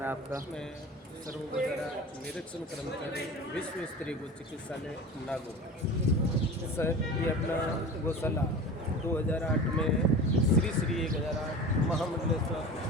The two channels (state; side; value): normal; both; correlation 0.34